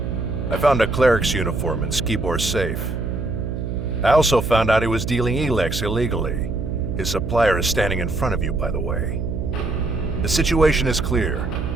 I found a cleric's uniform in Skibor's safe. I also found out he was dealing Elex illegally. His supplier is standing in front of you, by the way. The situation is clear.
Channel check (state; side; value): noise; right; hum, 4 dB below the sound